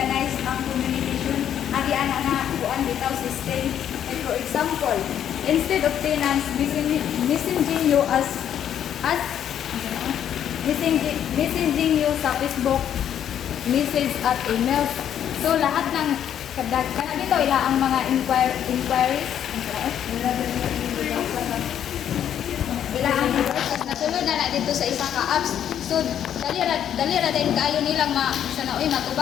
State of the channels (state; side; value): quieter; right; 9.8 dB